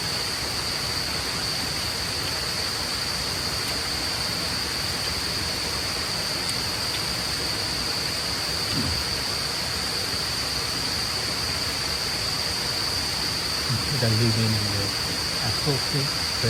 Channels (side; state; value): both; identical; correlation 1.00